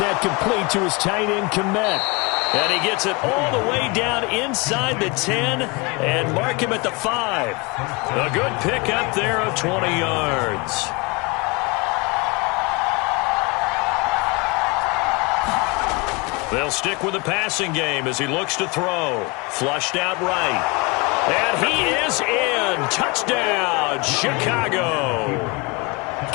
complete to his tight end, Komet. And he gets it all the way down inside the 10 and mark him at the 5. A good pickup there of 20 yards. They'll stick with the passing game as he looks to throw. Flushed out right. And he is in. Touchdown, Chicago.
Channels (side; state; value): right; quieter; 27.2 dB